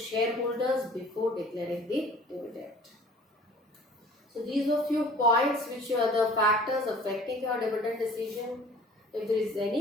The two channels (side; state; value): both; normal; correlation 0.49